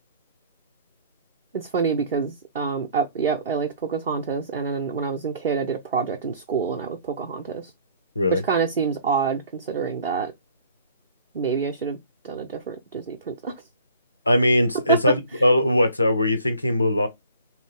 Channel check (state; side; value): inverted; both; correlation -0.53